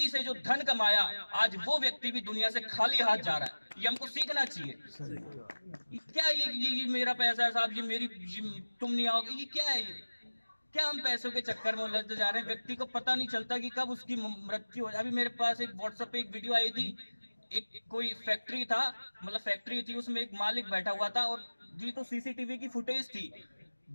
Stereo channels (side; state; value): both; inverted; correlation -1.00